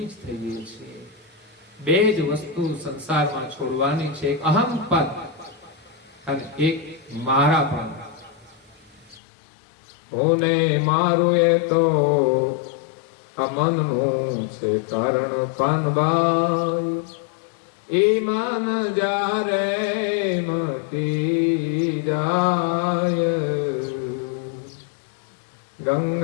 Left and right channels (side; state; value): right; drops out; at 9.2 s